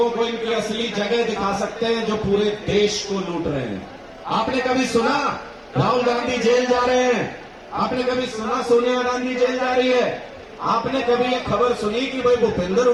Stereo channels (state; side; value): identical; both; correlation 1.00